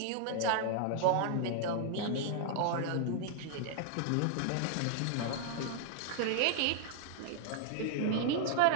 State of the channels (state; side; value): different; both; correlation 0.00